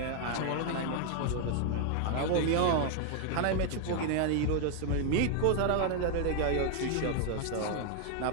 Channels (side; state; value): both; different; correlation 0.00